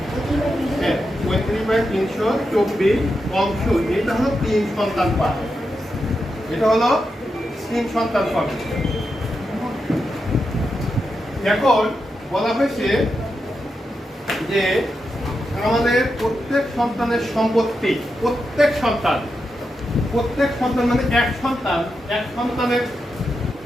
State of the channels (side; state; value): both; normal; correlation 0.87